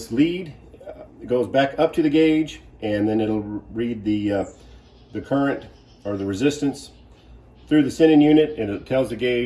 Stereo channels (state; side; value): identical; both; correlation 1.00